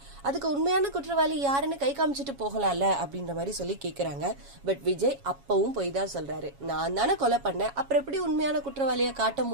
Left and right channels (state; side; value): late; left; 7.2 ms